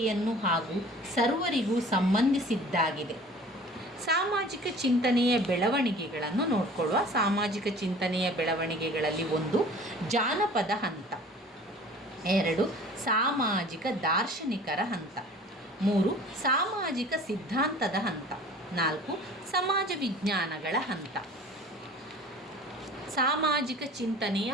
ಹಾಗೂ ಸರ್ವರಿಗೂ ಸಂಬಂಧಿಸಿದ್ದಾಗಿದೆ. ಸಾಮಾಜಿಕ ಚಿಂತನೆಯ ಬೆಳವಣಿಗೆಗಳನ್ನು ನೋಡಿಕೊಳ್ಳುವ. ಸಾಮಾಜಿಕ ಚಿಂತನೆಯ ಬೆಳವಣಿಗೆಗಳಲ್ಲಿ 1, ಜಾನಪದ ಹಂತ. 2, ಸಾಮಾಜಿಕ ದಾರ್ಶನಿಕರ ಹಂತ. 3, ಸಾಮಾಜಿಕ ಸಿದ್ಧಾಂತದ ಹಂತ. 4, ಸಮಾಜ ವಿಜ್ಞಾನಗಳ ಹಂತ. ಸಾಮಾಜಿಕ ಚಿಂತನೆಯ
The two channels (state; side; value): normal; both; correlation 0.45